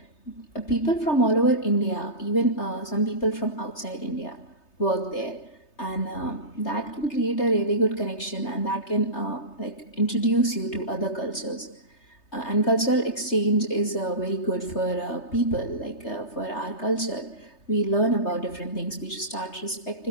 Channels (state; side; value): late; right; 3.3 ms